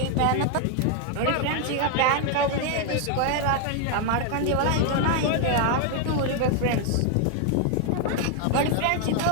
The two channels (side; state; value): both; different; correlation 0.00